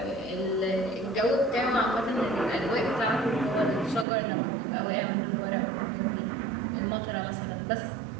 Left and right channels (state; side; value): drops out; left; at 4.0 s